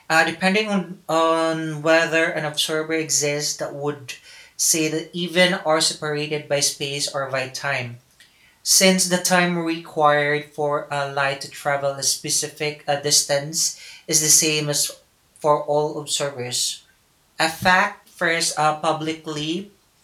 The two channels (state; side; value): identical; both; correlation 1.00